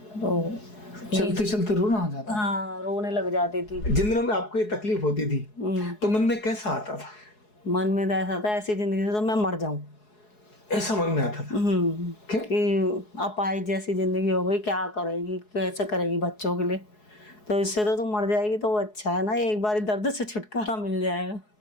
तो चलते चलते रोना आ जाता? हाँ, रोने लग जाती थी। जिन दिनों में आपको ये तकलीफ होती थी तो मन में कैसा आता था? मन में तो ऐसा था ऐसी जिंदगी से तो मैं मर जाऊं, ऐसा मन में आता था? क्या? कि अपाहिज जैसी जिंदगी हो गई, क्या करेगी, कैसे करेगी बच्चों के लिए, तो इससे तो तू मर जाएगी तो वो अच्छा है ना, एक बार दर्द से छुटकारा मिल जाएगा।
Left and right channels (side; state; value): right; late; 4.7 ms